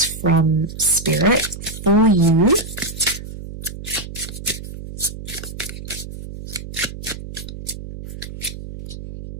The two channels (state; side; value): noise; right; hum, 10 dB below the sound